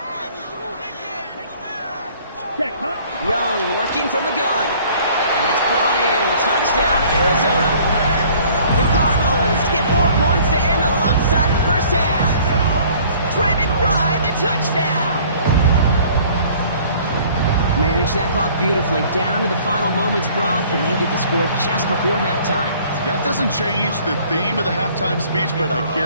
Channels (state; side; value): inverted; both; correlation -0.54